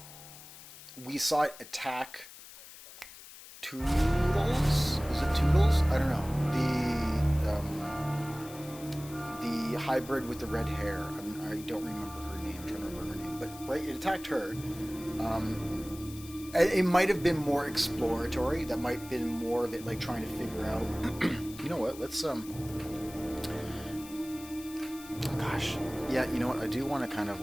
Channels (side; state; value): left; noise; hiss, 16 dB below the sound